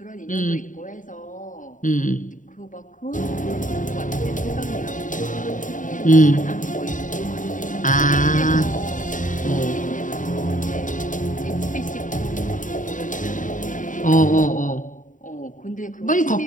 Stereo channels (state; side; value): late; right; 0.38 ms